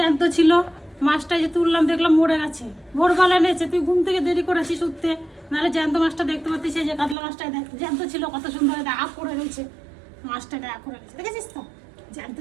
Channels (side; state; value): left; drops out; at 7.2 s